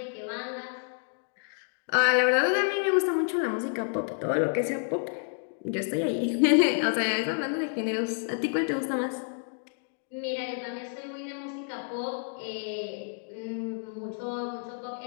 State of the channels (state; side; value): silent; right; 58 dB below the other